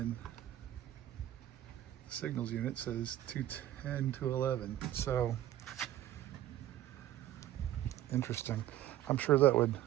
the Signals unit says 210 to 11. So interesting. I'm sure that would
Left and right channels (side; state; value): left; quieter; 13.2 dB